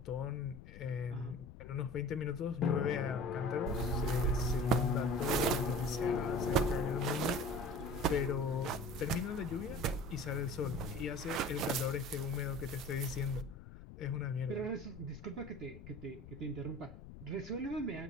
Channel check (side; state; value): left; noise; rumble, 15 dB below the sound